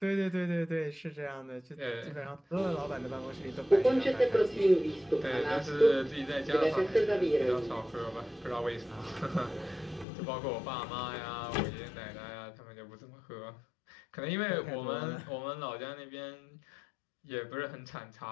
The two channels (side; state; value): right; drops out; at 10.1 s